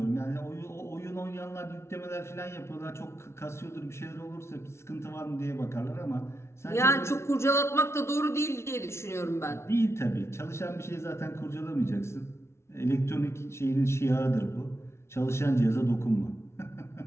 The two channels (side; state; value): right; late; 0.13 ms